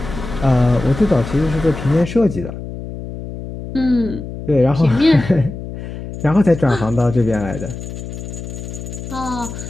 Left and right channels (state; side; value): noise; left; hum, 9 dB below the sound